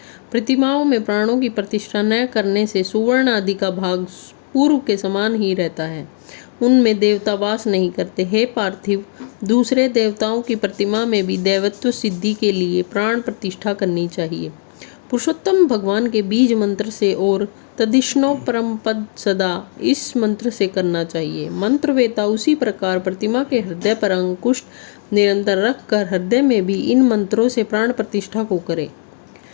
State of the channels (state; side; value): silent; right; 67 dB below the other